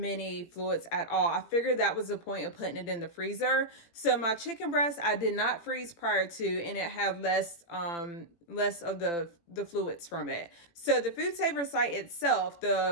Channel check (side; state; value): right; late; 18 ms